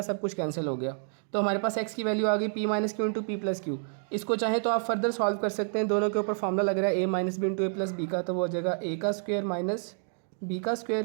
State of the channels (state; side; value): silent; left; 59 dB below the other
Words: सब कुछ कैंसिल हो गया। तो हमारे पास x की वैल्यू आ गई p minus Q into p plus Q. इसको चाहे तो आप फर्दर सॉल्व कर सकते हैं, दोनों के ऊपर फार्मूला लग रहा है a minus b into a plus b का, तो वो हो जाएगा a का स्क्वायर माइनस b का